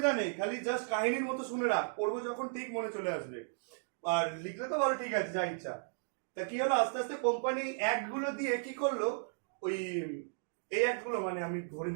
নেই, খালি জাস্ট কাহিনীর মতো শুনে রাখ, পড়বো যখন ঠিক মনে চলে আসবে। আর লিখলে তো ভালো, ঠিক আছে, যা ইচ্ছা। তা কি হলো? আস্তে আস্তে কোম্পানি অ্যাক্ট গুলো দিয়ে কি করলো, ওই এই অ্যাক্ট গুলো মানে আমি ধরে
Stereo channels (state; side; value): silent; left; digital silence